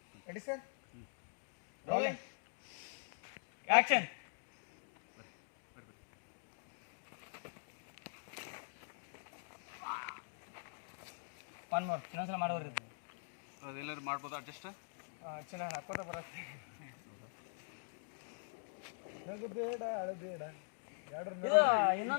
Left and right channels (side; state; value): right; silent; digital silence